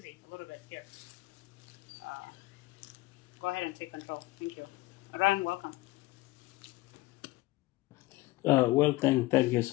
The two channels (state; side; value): quieter; right; 19.7 dB